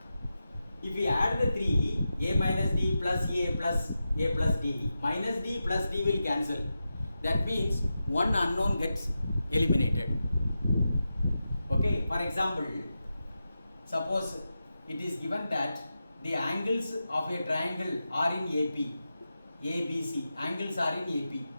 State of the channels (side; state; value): both; inverted; correlation -0.90